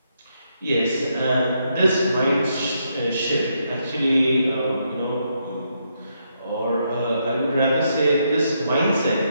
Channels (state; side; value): inverted; both; correlation -0.78